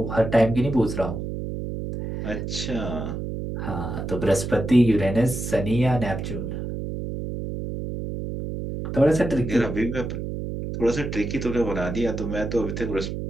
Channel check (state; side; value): noise; right; hum, 5 dB below the sound